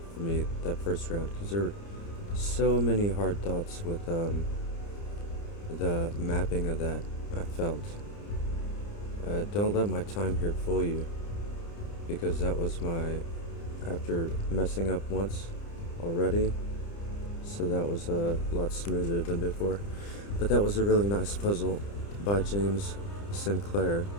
for me that first round, because there were so many hard thoughts with the mapping of that, I felt. Don't let my time here fool you, because that was after messing up once already, so that was a lot smoother than before. But that was a really nice puzzle by James Sinclair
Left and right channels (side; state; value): right; late; 30 ms